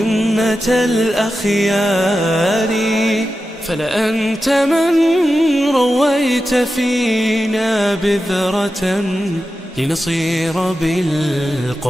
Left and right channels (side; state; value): both; normal; correlation 0.91